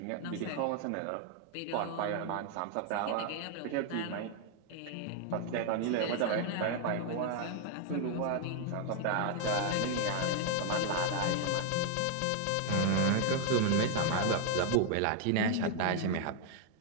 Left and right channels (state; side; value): different; both; correlation 0.00